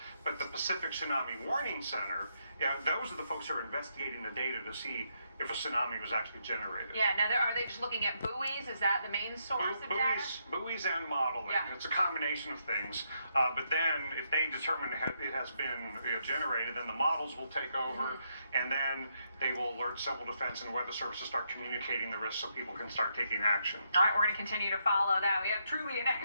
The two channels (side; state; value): both; inverted; correlation -0.78